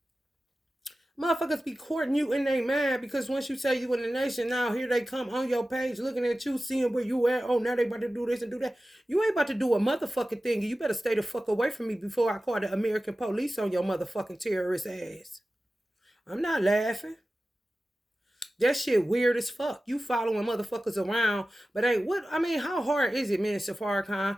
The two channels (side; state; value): both; normal; correlation 0.95